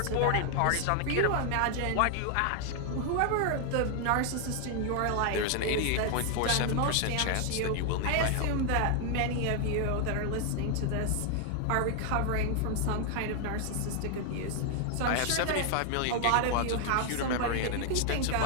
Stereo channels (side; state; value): both; different; correlation 0.00